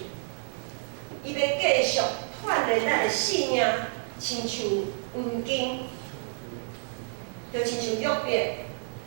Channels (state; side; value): silent; left; digital silence